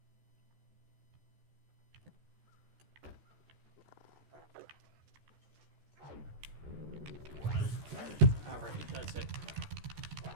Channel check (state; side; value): late; left; 14 ms